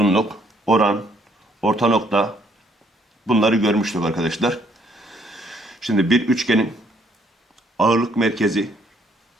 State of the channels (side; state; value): both; normal; correlation 0.67